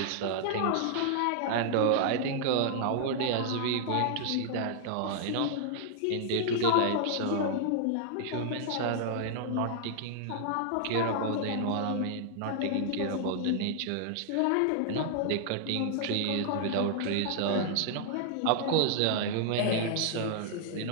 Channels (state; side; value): different; both; correlation -0.01